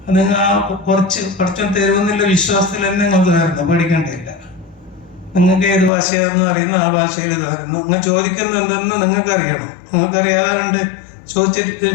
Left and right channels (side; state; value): right; drops out; at 5.9 s